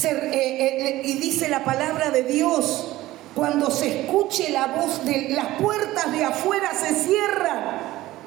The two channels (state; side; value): quieter; left; 16.6 dB